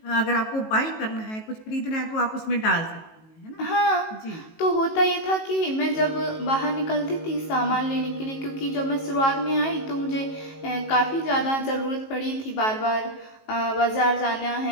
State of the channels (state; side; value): late; right; 19 ms